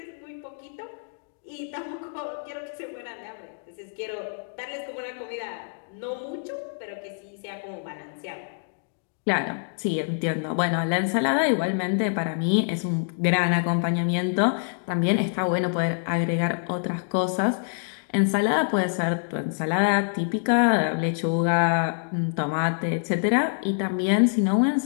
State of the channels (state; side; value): silent; right; digital silence